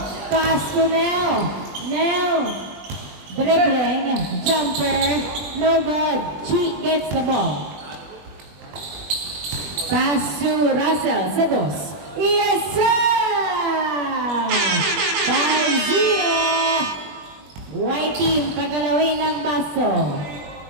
Pass to Nel. Nel. Dribbling. Jumper. No good. Chi gets the ball. Pass to Russell. Sa dos. Yes, sir! 5-0. White team. Pagalawin ang baso.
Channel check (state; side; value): late; left; 21 ms